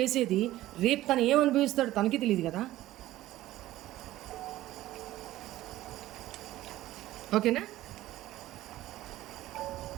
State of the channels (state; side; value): quieter; left; 15.4 dB